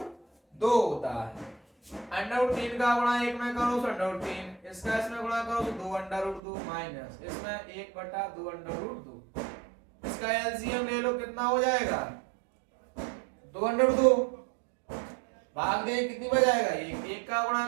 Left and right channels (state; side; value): drops out; left; at 6.4 s